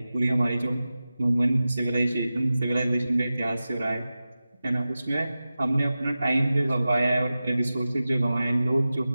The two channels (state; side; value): inverted; both; correlation -0.95